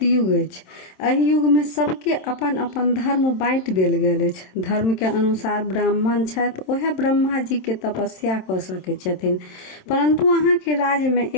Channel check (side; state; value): right; late; 27 ms